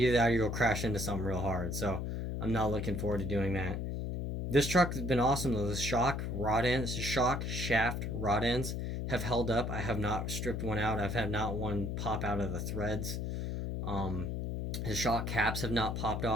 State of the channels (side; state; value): left; noise; hum, 2 dB below the sound